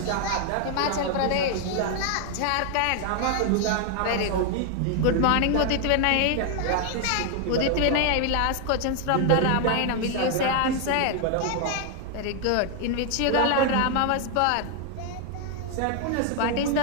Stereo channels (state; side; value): different; both; correlation 0.00